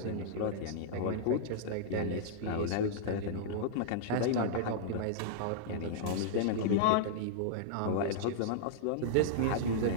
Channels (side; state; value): both; different; correlation -0.02